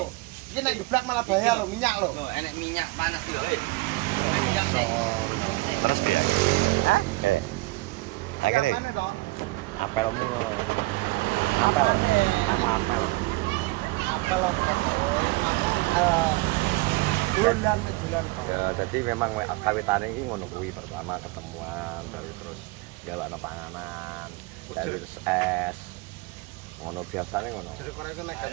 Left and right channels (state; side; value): quieter; left; 22.7 dB